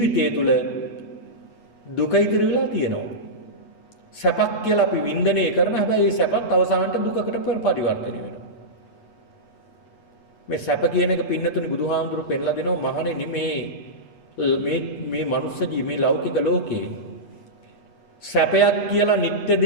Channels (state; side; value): late; right; 8.3 ms